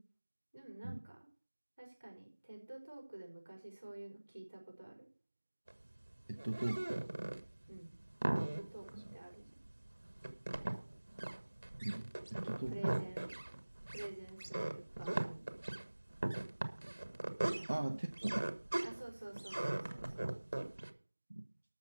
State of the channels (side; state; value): both; inverted; correlation -1.00